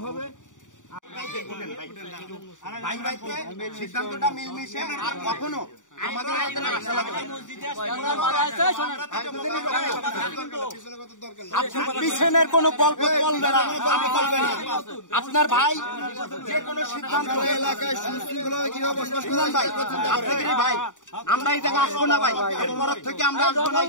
হবে। সিদ্ধান্তটা মিলমিশে আর কখনো আমাদের পিছনের কোনো গল্প চলবে না। আপনার ভাই যে কোনো সিদ্ধান্ত এলাকায় সুশৃঙ্খলা কিভাবে বসবাস করেন ভাই, আপনাদেরই ভাই, আমরা এই জায়গায় আসবো না ভাই, এরপর থেকে আমরা আসবো না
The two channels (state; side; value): late; right; 0.86 ms